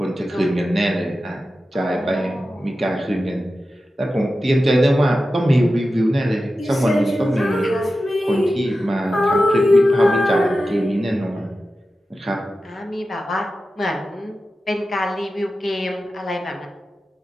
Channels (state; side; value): normal; both; correlation 0.93